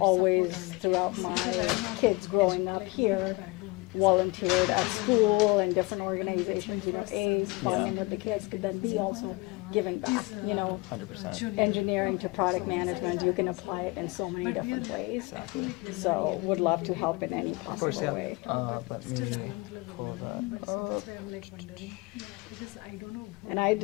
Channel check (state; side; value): quieter; right; 24.0 dB